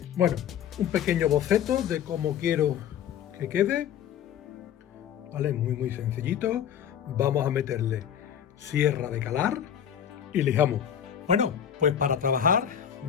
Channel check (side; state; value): right; quieter; 9.3 dB